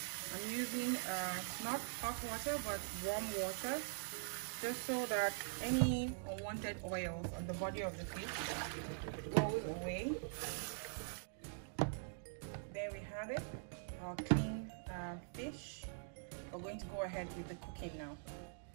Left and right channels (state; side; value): silent; left; digital silence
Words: I'm using not hot water but warm water, just so that any unwanted oils on the body of the fish goes away. There we have it, our clean fish. We're going to go ahead with the cooking now.